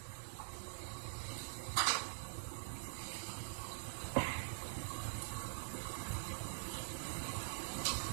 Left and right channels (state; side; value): silent; left; digital silence